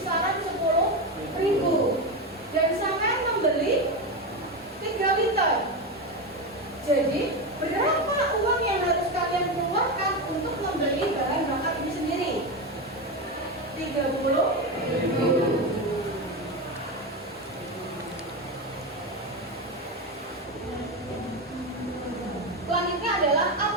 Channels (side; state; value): both; normal; correlation 0.15